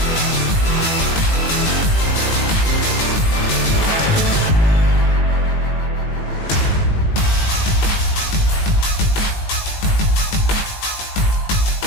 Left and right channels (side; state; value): right; late; 18 ms